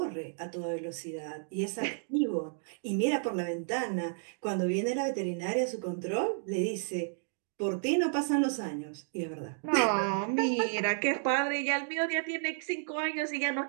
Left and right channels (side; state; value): left; silent; digital silence